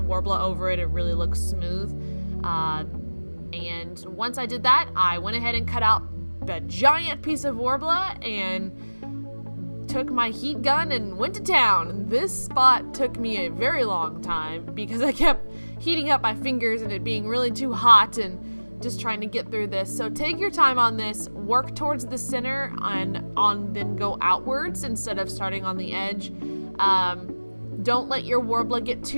over it, it really looks smooth. And once I did that, I went ahead and cut out a giant piece of Worbla and took my heat gun and went to town. This spot took me a very long time because I kept heating up my fingers and it being really too hot and just trying to get through this. So take your time on this, work towards the center and then go outwards instead of starting on the edge. Don't let your Worbla get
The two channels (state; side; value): inverted; both; correlation -1.00